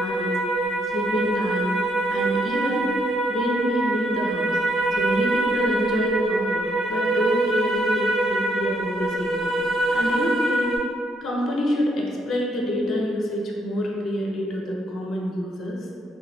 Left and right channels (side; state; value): both; normal; correlation 0.73